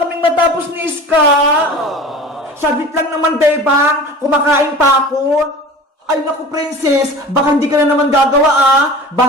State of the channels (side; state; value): both; normal; correlation 0.38